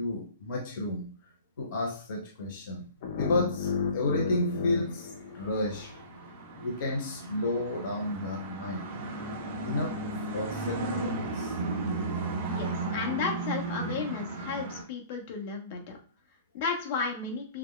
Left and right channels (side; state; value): both; inverted; correlation -0.45